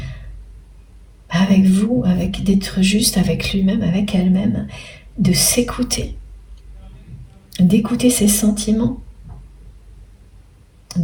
vous, d'être juste avec lui-même, avec elle-même, de s'écouter, d'écouter ses sentiments,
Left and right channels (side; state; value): both; identical; correlation 1.00